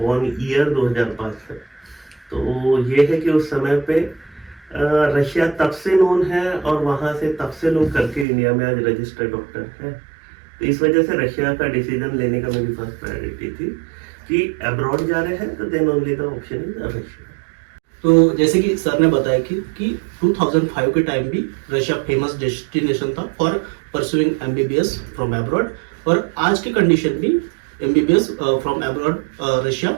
ईयर 2005 है। तो ये है कि उस समय पे रशिया तब से नोन है और वहाँ से तब से लोग करके इंडिया में आज रजिस्टर्ड डॉक्टर है। तो इस वजह से रशिया का डिसीजन लेने का मेरी फर्स्ट प्रायोरिटी थी कि अब्रॉड जा रहे हैं तो then only the option is Russia. तो जैसे कि सर ने बताया कि 2005 के टाइम भी रशिया फेमस डेस्टिनेशन था for pursuing MBBS from abroad, और आज की कंडीशन भी एमबीबीएस फ्रॉम अब्रॉड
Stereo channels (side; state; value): left; drops out; at 8.2 s